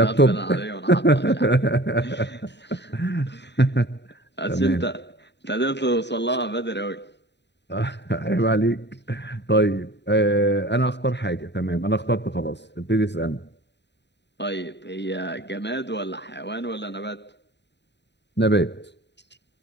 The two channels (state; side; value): late; right; 0.50 ms